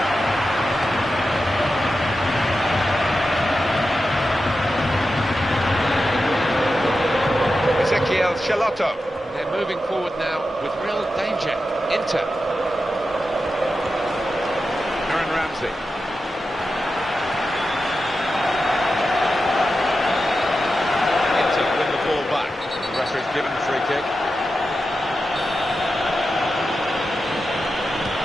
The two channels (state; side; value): normal; both; correlation 0.91